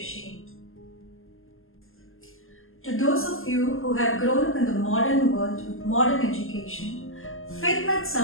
To those of you who have grown up in the modern world with modern education, faith might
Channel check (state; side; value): late; right; 0.60 ms